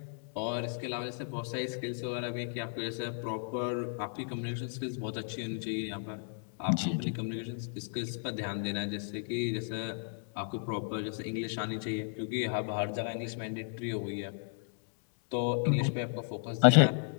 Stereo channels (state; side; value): silent; right; 55 dB below the other